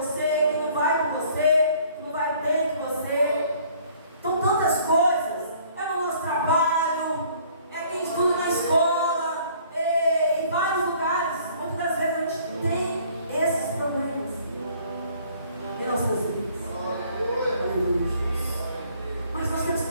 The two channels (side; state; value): both; inverted; correlation -0.58